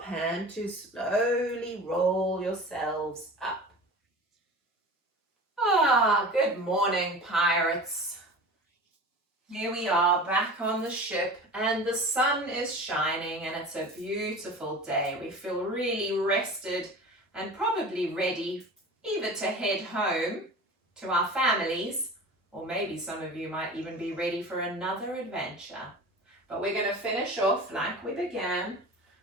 hand to slowly roll yourselves up. Good morning, pirates. Here we are back on the ship and the sun is shining and it's a beautiful day. We feel really rested and probably ready either to head home to our families, or maybe some of you might even be ready for another adventure. But we're going to finish off like we began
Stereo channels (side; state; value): both; normal; correlation 0.36